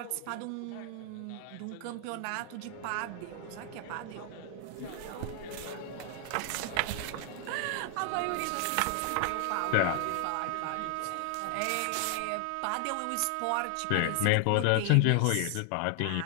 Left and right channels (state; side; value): different; both; correlation 0.00